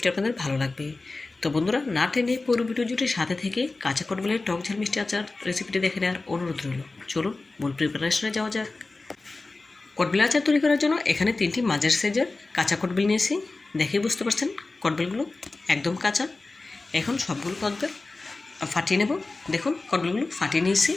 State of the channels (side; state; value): right; quieter; 3.4 dB